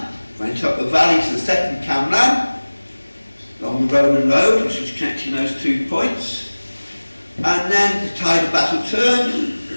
went up the valley to the second Camlann, along the Roman road, which was connecting those 2 points, and then the tide of battle turned,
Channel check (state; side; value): inverted; both; correlation -1.00